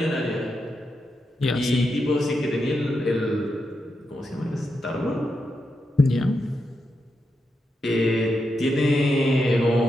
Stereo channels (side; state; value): both; normal; correlation 0.86